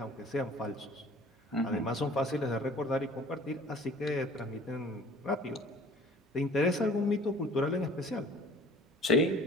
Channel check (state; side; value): normal; both; correlation 0.48